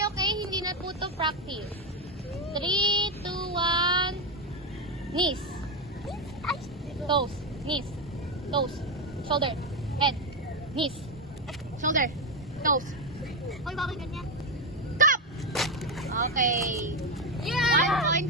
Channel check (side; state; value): both; normal; correlation 0.09